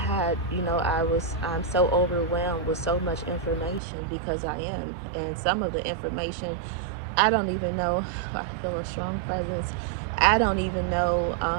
I'm so overwhelmed with so much information because I am, and some of the information I don't even know. I feel a strong presence. I don't even know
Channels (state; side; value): drops out; left; at 3.8 s